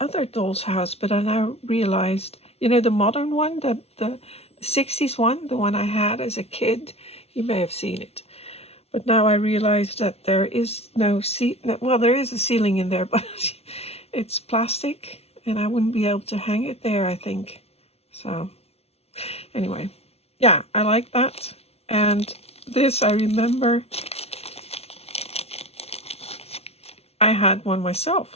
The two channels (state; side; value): late; right; 0.30 ms